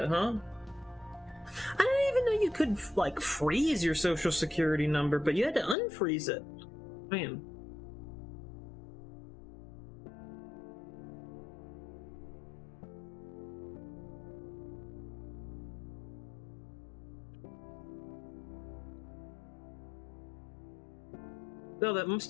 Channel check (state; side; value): drops out; right; at 5.8 s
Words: huh? I didn't even know you could, like, freeze your social security number, but you had to unfreeze it. Man. Well, that